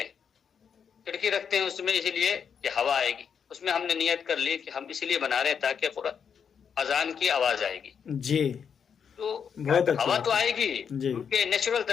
ہیں، کھڑکی رکھتے ہیں اس میں اسی لیے کہ ہوا آئے گی، اس میں ہم نے نیت کر لی کہ ہم اسی لیے بنا رہے ہیں تاکہ اذان کی آواز آئے گی، جی تو بہت اچھی ہوا بات تو ہے۔ آئے گی جی کیونکہ نیچرل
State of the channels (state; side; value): quieter; right; 7.1 dB